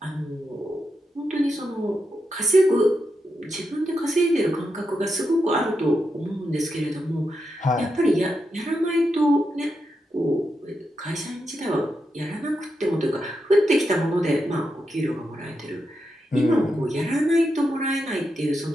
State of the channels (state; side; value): normal; both; correlation 0.85